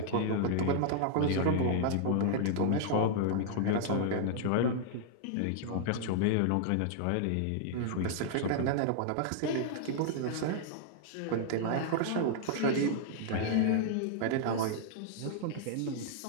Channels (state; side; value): different; both; correlation -0.01